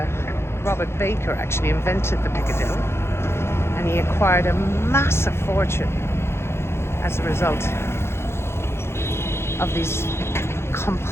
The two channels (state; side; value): late; right; 0.12 ms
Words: Robert Baker actually invented the Piccadilly, and he acquired a massive fortune as a result of these